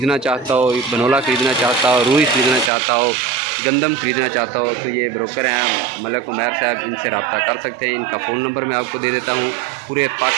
चाहता हो, बनोला ख़रीदना चाहता हो, रूई ख़रीदना चाहता हो, गंदम ख़रीदना चाहता हो, तो ये ब्रोकर हैं मलक उमैर साहब, इनसे रब्ता कर सकते हैं। इनका फ़ोन नंबर मैं आपको दे देता हूँ। पूरे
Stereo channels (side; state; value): left; drops out; at 2.7 s